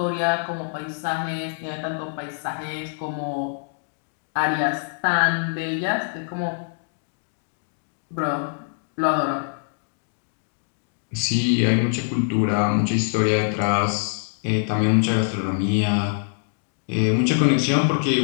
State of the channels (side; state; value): right; silent; digital silence